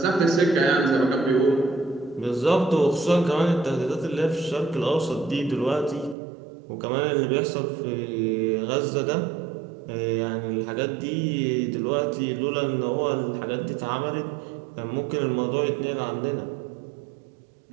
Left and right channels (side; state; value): left; drops out; at 6.2 s